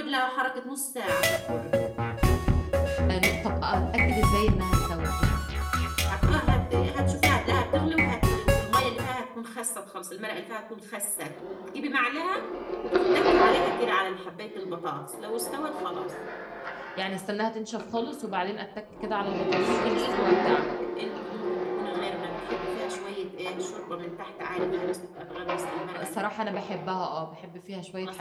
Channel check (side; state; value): both; identical; correlation 1.00